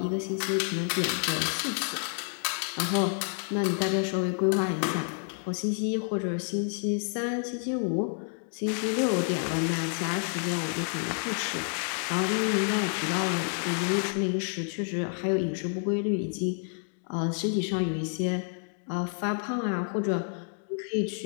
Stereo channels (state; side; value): silent; right; 55 dB below the other